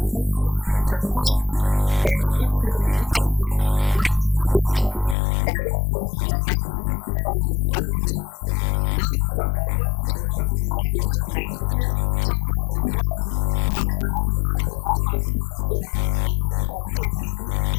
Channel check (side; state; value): right; drops out; at 5.2 s